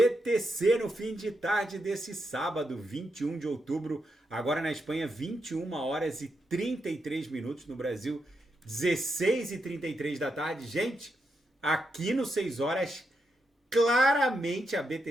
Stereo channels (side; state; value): both; normal; correlation 0.84